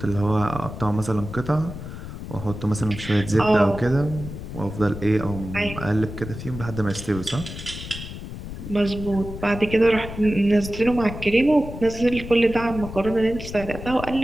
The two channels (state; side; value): noise; left; rumble, 10 dB below the sound